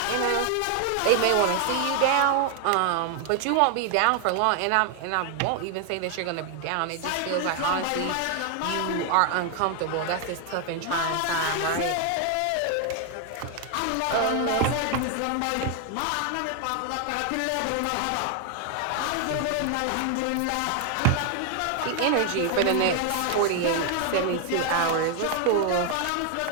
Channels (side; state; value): both; different; correlation 0.00